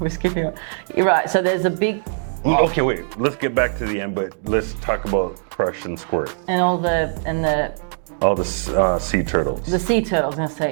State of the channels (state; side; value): silent; left; digital silence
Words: skipping on. You're right, so there's a big... Okay, wait, let's get back to the end, but let's talk about Crush and Squirt. And all the sea turtles. The sea turtles, I'm gonna